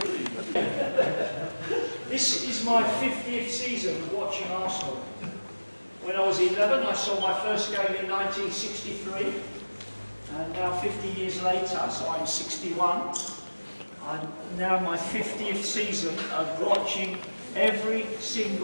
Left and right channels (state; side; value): inverted; both; correlation -1.00